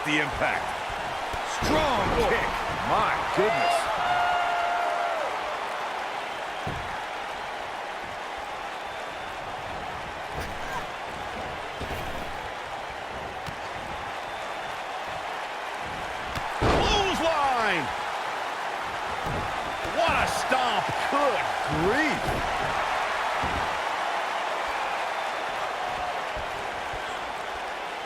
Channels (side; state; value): both; identical; correlation 1.00